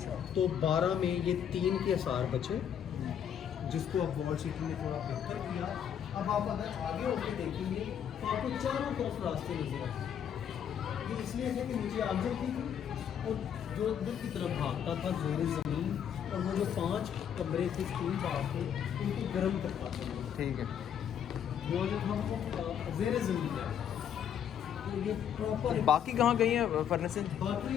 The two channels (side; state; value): right; quieter; 8.8 dB